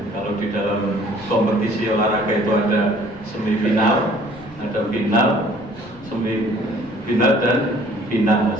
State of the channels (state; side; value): noise; right; rumble, 21 dB below the sound